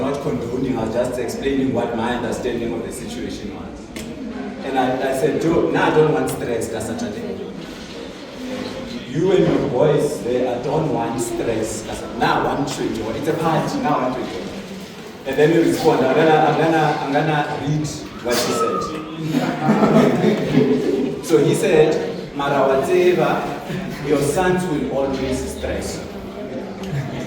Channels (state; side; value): identical; both; correlation 1.00